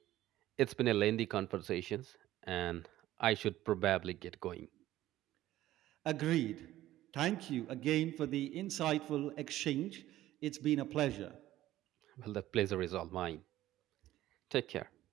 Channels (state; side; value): quieter; left; 14.6 dB